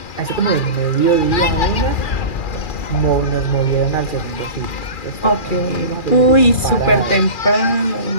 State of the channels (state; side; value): late; right; 2.4 ms